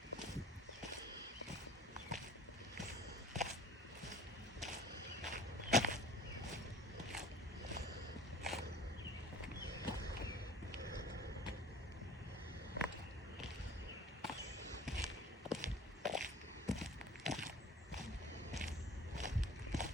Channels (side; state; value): both; normal; correlation 0.46